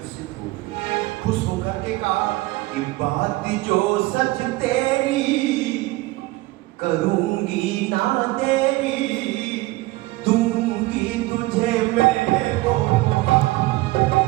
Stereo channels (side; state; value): left; quieter; 19.9 dB